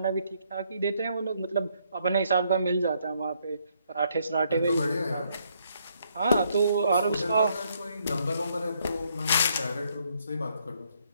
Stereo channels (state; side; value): inverted; both; correlation -0.71